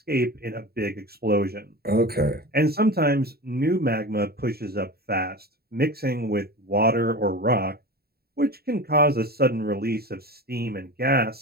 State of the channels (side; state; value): left; late; 0.45 ms